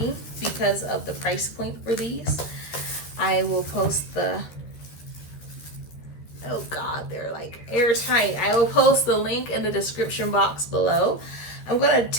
because of the price point for these. I will post the, oh God, they're like airtight. I will post the link in the description box below. I'm gonna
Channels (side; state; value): right; late; 13 ms